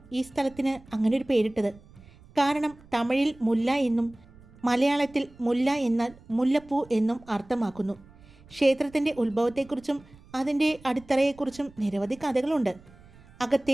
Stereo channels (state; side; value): noise; right; rumble, 24 dB below the sound